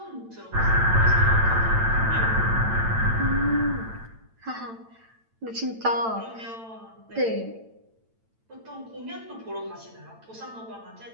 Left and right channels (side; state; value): left; late; 8.9 ms